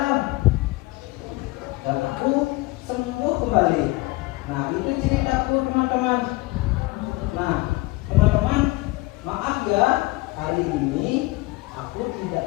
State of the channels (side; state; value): right; quieter; 21.5 dB